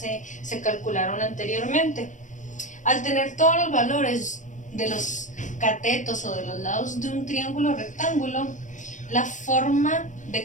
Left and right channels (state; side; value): late; right; 0.36 ms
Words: calcularon anteriormente. Al tener todos los valores de los catetos o de los lados de un triángulo rectángulo, la forma